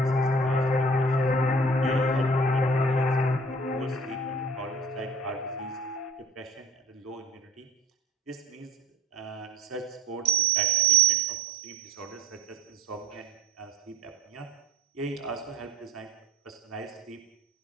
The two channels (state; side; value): normal; both; correlation 0.44